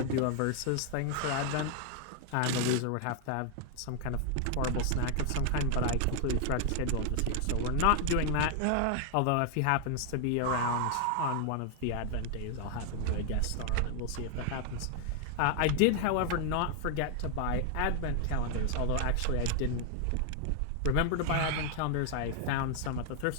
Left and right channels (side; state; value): both; different; correlation 0.00